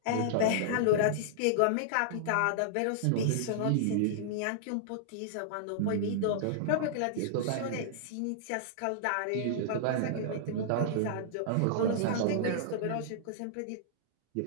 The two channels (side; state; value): both; different; correlation -0.02